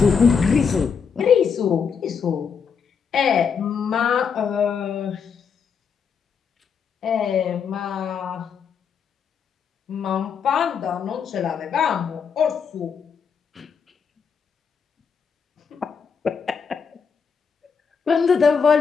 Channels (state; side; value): quieter; right; 6.3 dB